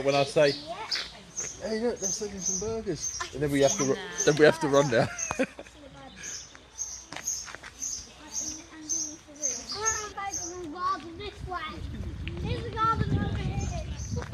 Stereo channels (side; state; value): both; identical; correlation 1.00